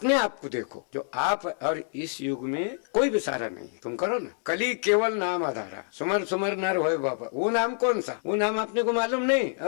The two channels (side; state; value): right; silent; 60 dB below the other